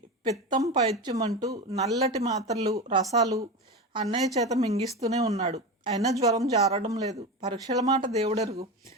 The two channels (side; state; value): both; normal; correlation 0.23